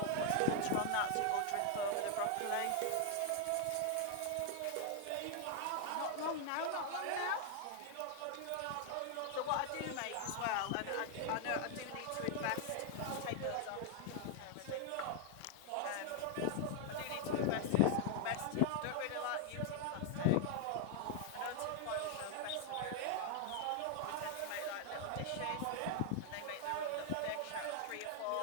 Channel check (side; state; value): both; different; correlation 0.00